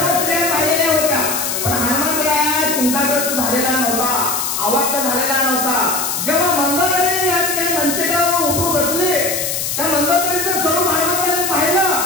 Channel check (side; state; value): left; noise; hiss, 2 dB below the sound